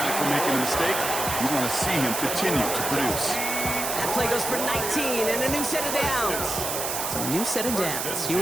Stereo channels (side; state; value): right; noise; hiss, 3 dB below the sound